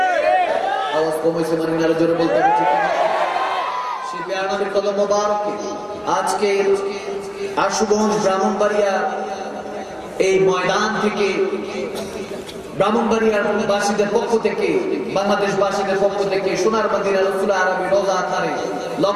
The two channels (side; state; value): both; identical; correlation 1.00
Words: আওয়াজ কমেছে মানে আরো জোরে বলতে হবে ঠিক না? সেই প্যারা নবীর কদম মোবারকে আজকে আশুগঞ্জ ব্রাহ্মণবাড়িয়া এই ময়দান থেকে, ব্রাহ্মণবাড়িয়ার বাসীদের পক্ষ থেকে, বাংলাদেশ বাসীদের পক্ষ থেকে সোনার মদিনা রাসূল আরবি রোজা আথারে